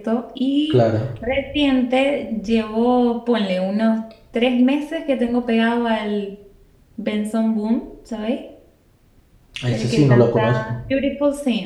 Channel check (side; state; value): both; identical; correlation 1.00